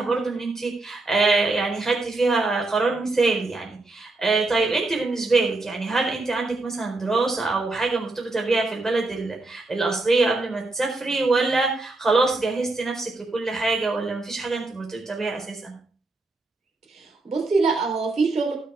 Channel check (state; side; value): quieter; left; 3.2 dB